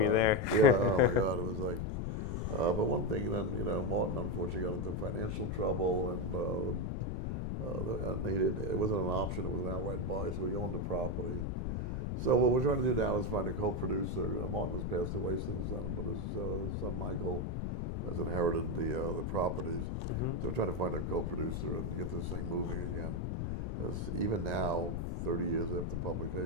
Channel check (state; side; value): noise; left; rumble, 1 dB below the sound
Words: there. Yeah, oh my God, it was like. But one thing, then, Martin unfortunately got into financial trouble, and it wasn't an option, it was an outright buy, so he owned the property. So what we're trying to do now is find a co-producer. Martin has passed away since then, but his son Michael has inherited the properties. So we're trying to find a co-producer and get this thing moving again. Because even now, 30 years after